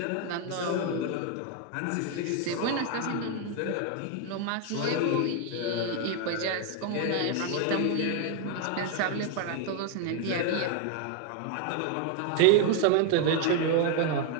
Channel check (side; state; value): both; different; correlation 0.01